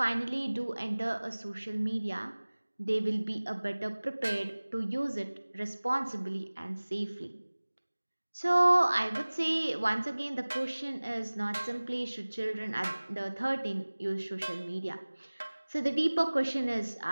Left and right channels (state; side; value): inverted; both; correlation -1.00